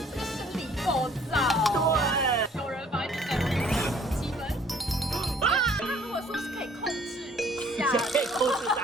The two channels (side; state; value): both; normal; correlation 0.58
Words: 这个生理构造。对。有人把你等7分。他如果说是可以控制一下，可以控制